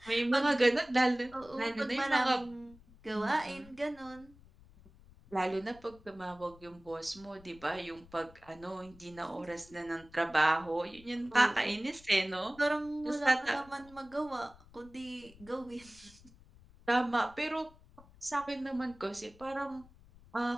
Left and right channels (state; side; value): noise; left; rumble, 23 dB below the sound